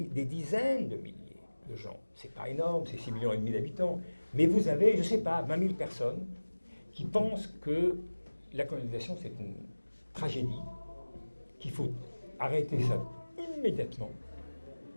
dizaines de milliers de gens. C'est pas énorme, c'est 6,5 millions d'habitants. Mais vous avez, je ne sais pas, 20 000 personnes qui pensent que la colonisation, c'est une tragédie, qu'il faut arrêter ça immédiatement.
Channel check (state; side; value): inverted; both; correlation -1.00